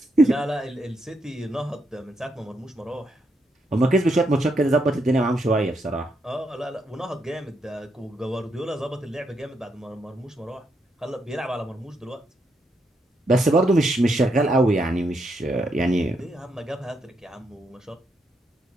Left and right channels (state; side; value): normal; both; correlation 0.79